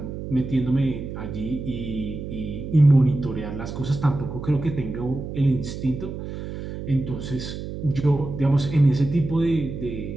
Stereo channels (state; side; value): noise; right; hum, 8 dB below the sound